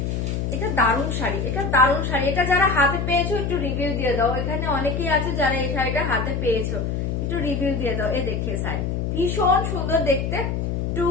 এটা দারুণ শাড়ি, এটা দারুণ শাড়ি। এটা যারা হাতে পেয়েছো একটু রিভিউ দিয়ে দাও। এখানে অনেকেই আছে যারা এই শাড়িটা হাতে পেয়েছো, একটু রিভিউ দিয়ে দাও। এই দেখে শাড়ি ভীষণ সুন্দর দেখতে,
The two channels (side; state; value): left; noise; hum, 1 dB below the sound